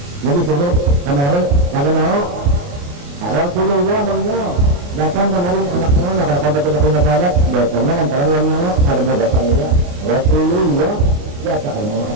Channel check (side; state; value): left; late; 28 ms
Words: jadi dulu kemarin kada mau Rasulullah menyo datang kemarin anaknya nakal sampai ke rumah sahabat datangnya antara yang ada mau datang dia Rasulullah dia tak mau